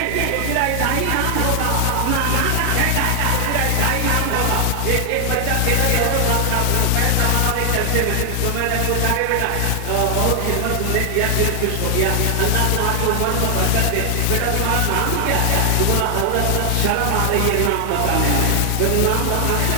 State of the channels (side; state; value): both; different; correlation 0.00